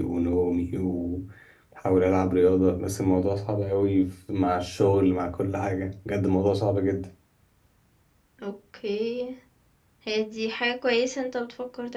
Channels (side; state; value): both; identical; correlation 1.00